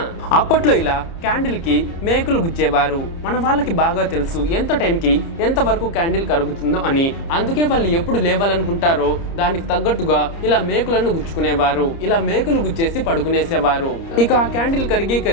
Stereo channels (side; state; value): right; late; 30 ms